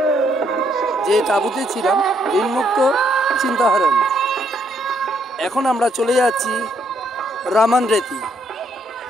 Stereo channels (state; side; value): normal; both; correlation 0.72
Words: যে তাঁবুতে ছিলাম, ঋণমুক্ত চিন্তাহারণ। এখন আমরা চলে যাচ্ছি রামন